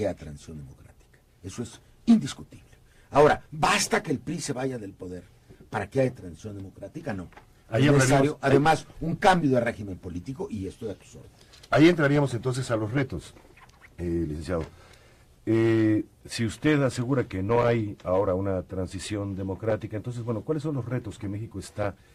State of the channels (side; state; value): both; identical; correlation 1.00